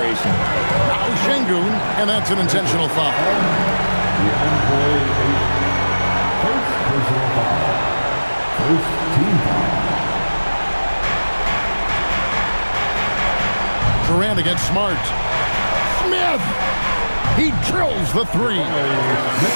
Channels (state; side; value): inverted; both; correlation -1.00